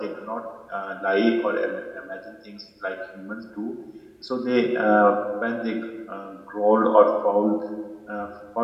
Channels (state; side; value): identical; both; correlation 1.00